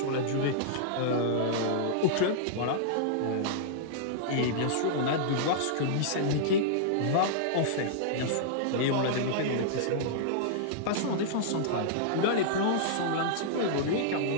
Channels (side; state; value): both; different; correlation -0.02